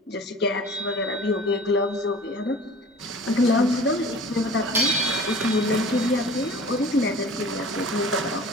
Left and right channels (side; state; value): both; normal; correlation 0.44